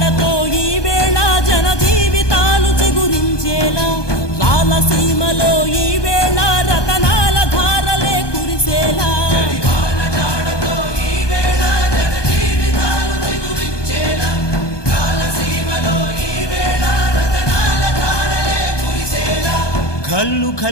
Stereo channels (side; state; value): right; late; 1.2 ms